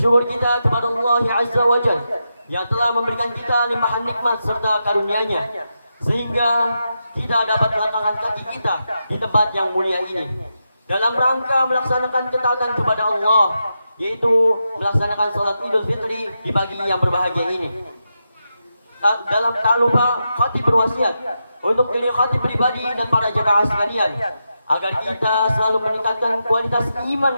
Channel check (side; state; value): both; inverted; correlation -0.87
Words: kita kepada Allah Azza wa Jalla yang telah memberikan kita limpahan nikmat serta karunia-Nya sehingga kita dapat melangkahkan kaki kita di tempat yang mulia ini dalam rangka melaksanakan ketaatan kepada Allah, yaitu melaksanakan salat Idul Fitri di pagi yang berbahagia ini. Tak lupa khatib berwasiat untuk diri khatib pribadi dan para jemaah sekalian agar kita selalu meningkatkan kualitas